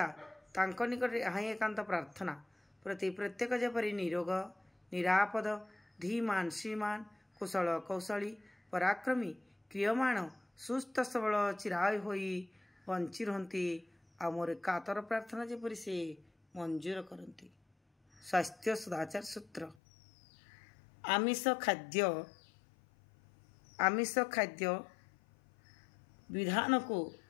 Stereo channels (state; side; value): drops out; right; at 19.8 s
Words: तांको निकट यहाँ एकांत प्रार्थना प्रति प्रत्येक जेपरी निरोग निरापद धीमान श्रीमान कुशल कौशली पराक्रमी क्रियमाण सुस्थ सबल चिराय होई बंची रहती आ मोर कातर प्रार्थना जेपरी से मंजूर करती। स्वास्थ्य सदाचार सूत्र आमिष खाद्य विधान को